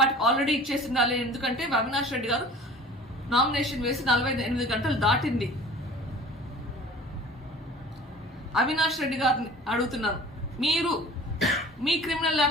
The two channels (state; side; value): normal; both; correlation 0.44